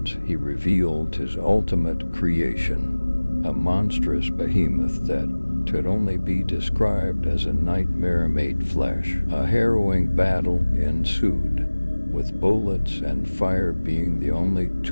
he revealed his ultimate creation, a monstrous behemoth that could only be described as a nightmare made flesh. A harrowing battle ensued, with bullets and fire being the only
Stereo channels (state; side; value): inverted; both; correlation -1.00